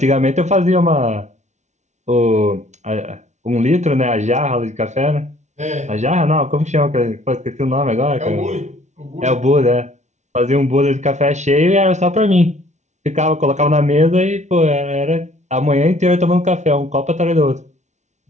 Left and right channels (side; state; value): left; late; 0.34 ms